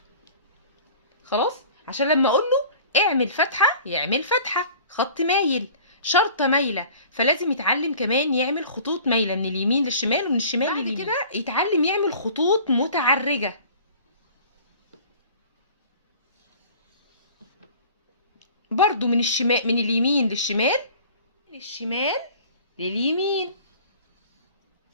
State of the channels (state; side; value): inverted; both; correlation -0.45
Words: خلاص، عشان لما اقول له اعمل فتحة يعمل فتحة، خط مايل، شرطة مايلة، فلازم يتعلم كمان يعمل خطوط مايلة من اليمين للشمال ومن الشمال لليمين. بعد كده يتعلم يعمل خطوط متعرجة، برضو من الشمال، من اليمين للشمال، من الشمال لليمين.